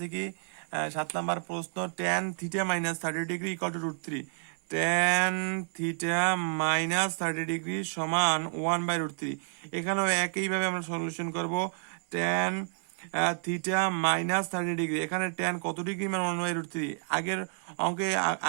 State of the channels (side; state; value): left; silent; 58 dB below the other